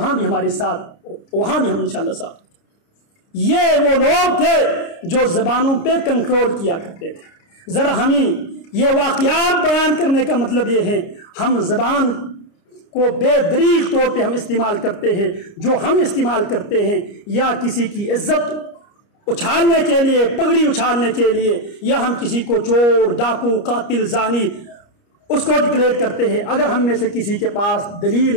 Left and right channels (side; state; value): right; late; 29 ms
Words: بھی ہمارے ساتھ، وہاں بھی ہم انشاءاللہ ساتھ۔ یہ وہ لوگ تھے جو زبانوں پہ کنٹرول کیا کرتے تھے۔ ذرا ہمیں یہ واقعات بیان کرنے کا مطلب یہ ہے، ہم زبان کو بے دریغ طور پہ ہم استعمال کرتے ہیں، جو ہم استعمال کرتے ہیں یا کسی کی عزت اچھالنے کے لیے، پگڑی اچھالنے کے لیے، یا ہم کسی کو چور، ڈاکو، قاتل، زانی اس کو ڈکلیئر کرتے ہیں۔ اگر ہم میں سے کسی کے پاس دلیل